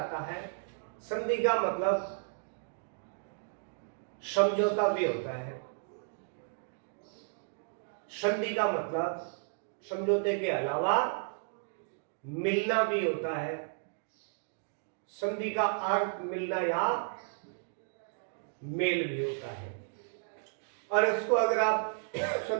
है, संधि का मतलब समझौता भी होता है। संधि का मतलब समझौते के अलावा मिलना भी होता है। संधि का अर्थ मिलना या मेल भी होता है। और इसको अगर आप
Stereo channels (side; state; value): left; silent; digital silence